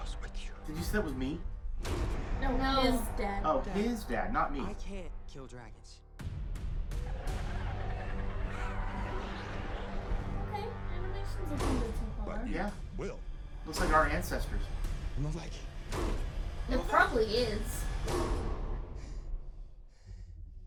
with you. Did you say that was me? No, His dad. Oh, his dad, not me. I can't kill dragons. Okay, animation's looking good so far. But you Yeah. will. Looks like our ancestors. Not like It probably is.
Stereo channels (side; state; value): both; identical; correlation 1.00